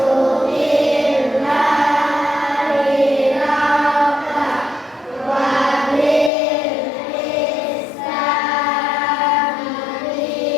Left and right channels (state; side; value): drops out; right; at 6.3 s